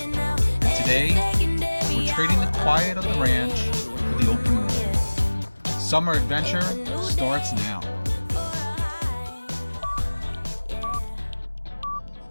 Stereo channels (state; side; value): inverted; both; correlation -1.00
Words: And today, we're trading the quiet of the ranch for the open world. Summer adventure starts now.